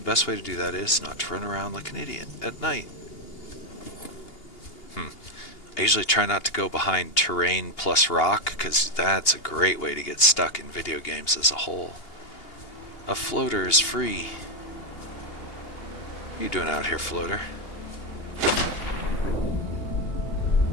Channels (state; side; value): late; right; 2.8 ms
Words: best way to do that is not to run around like an idiot at night. I usually try not to go behind terrain plus rock, because that's a great way to get stuck in video games as a whole. A floater is free. What are you doing out here, floater?